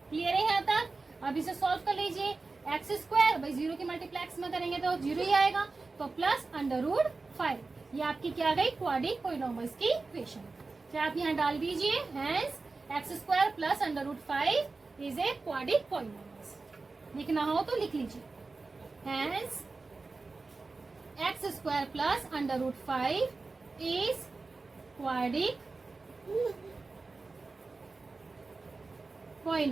क्लियर है यहाँ तक? अब इसे सॉल्व कर लीजिए, एक्स स्क्वायर भाई 0 की मल्टीप्लाई एक्स में करेंगे तो 0 ही आएगा, तो प्लस √5। ये आपकी क्या गई क्वाड्रिक पॉलिनोमियल्स की इक्वेशन। क्या आप यहाँ डाल दीजिए, hence x square plus √5 is a quadric polynomials. लिखना हो तो लिख लीजिए, hence x square plus √5 is quadric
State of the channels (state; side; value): quieter; left; 3.8 dB